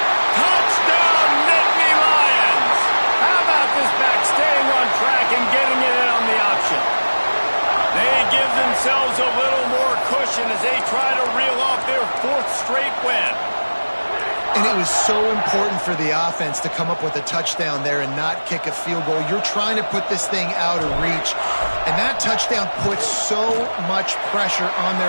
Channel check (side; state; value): both; inverted; correlation -1.00